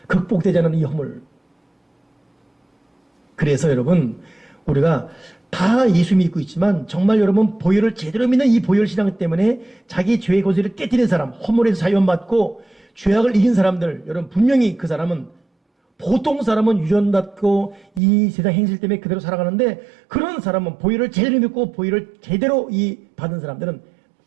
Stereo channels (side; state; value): left; drops out; at 18.0 s